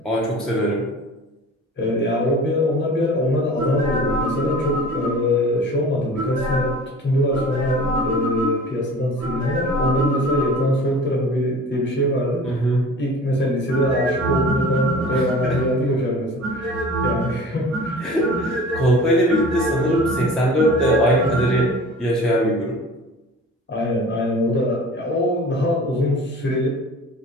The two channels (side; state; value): both; normal; correlation 0.42